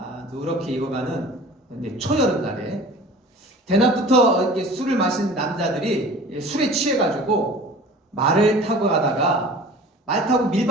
누렇게 익어가는 초여름날에 대낮부터 술을 마신 남자들이 술에 취해가지고 말을 타고 가다가 말 타고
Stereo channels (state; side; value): normal; both; correlation 0.42